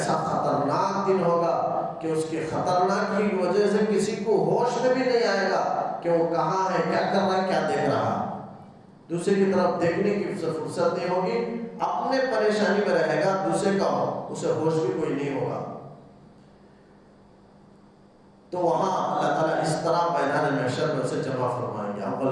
خطرناک دن ہوگا کہ اس کے خطرناک کی وجہ سے کسی کو ہوش میں بھی نہیں آئے گا کہ وہ کہاں ہے، کیا کر رہا ہے، کیا دیکھ رہا ہے، دوسرے کی طرف دیکھنے کی فرصت نہیں ہوگی، اپنے پریشانی میں رہے گا، دوسرے کا اسے ہوش بھی کوئی نہیں ہوگا۔ تو وہاں اللہ تعالیٰ اس طرح میدان محشر میں اسے جمع فرمائیں گے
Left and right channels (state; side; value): identical; both; correlation 1.00